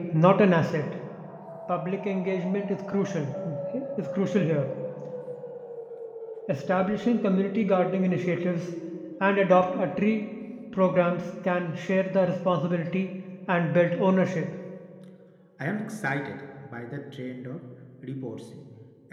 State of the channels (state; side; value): identical; both; correlation 1.00